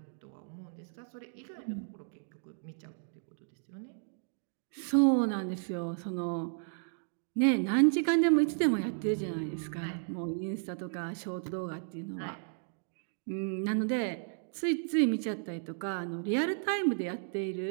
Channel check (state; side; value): silent; left; digital silence